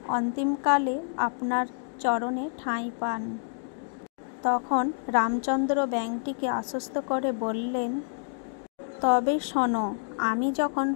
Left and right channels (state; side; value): silent; right; digital silence